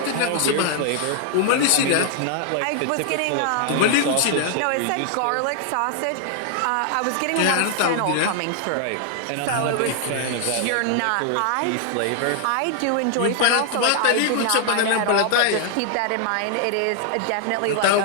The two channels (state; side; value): different; both; correlation 0.00